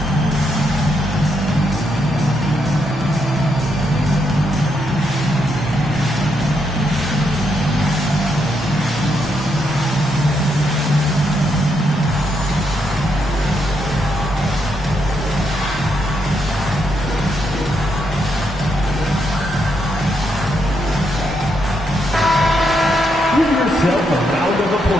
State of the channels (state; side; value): normal; both; correlation 0.79